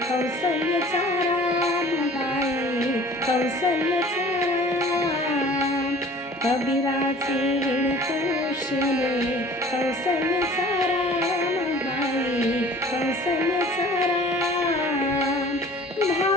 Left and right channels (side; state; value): both; normal; correlation 0.48